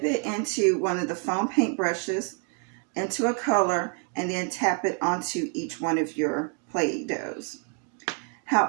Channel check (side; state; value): left; quieter; 38.9 dB